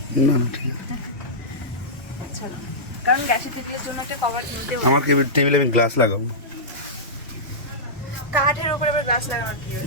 না না ঠিক আছে। চলো, কারণ গ্যাসের টেবিলের জন্য একটা কভার কিনতে হবে। আমার টেবিলে আমি গ্লাস লাগাবো। কাঠের উপরে আবার গ্লাস লাগানোর কি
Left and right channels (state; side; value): normal; both; correlation -0.14